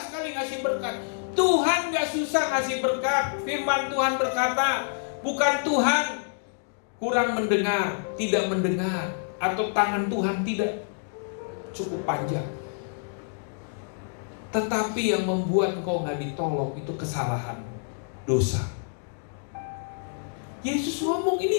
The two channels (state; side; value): silent; right; digital silence